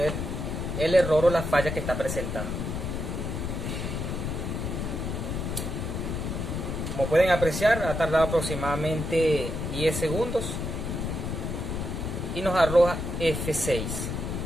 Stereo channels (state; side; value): noise; left; rumble, 3 dB below the sound